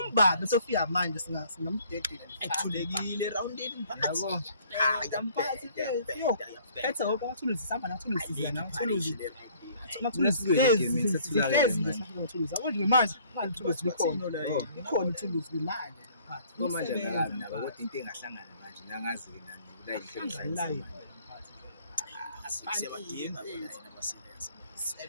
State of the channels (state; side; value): inverted; both; correlation -0.57